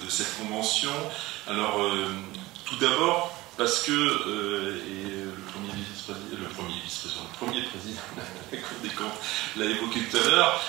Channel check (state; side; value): quieter; left; 19.3 dB